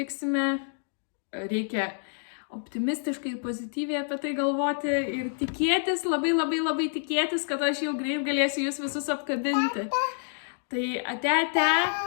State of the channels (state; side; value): silent; right; digital silence